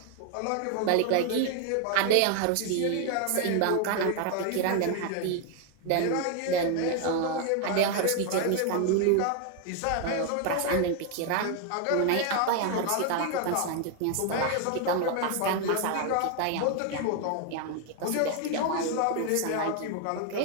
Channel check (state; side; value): different; both; correlation 0.01